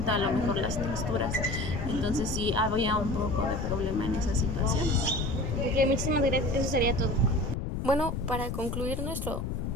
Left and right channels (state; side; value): noise; left; rumble, 3 dB below the sound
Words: a lo mejor las texturas. Entonces sí había un poco de problema en esas situaciones. Ok, muchísimas gracias, eso sería todo. Bueno, para concluir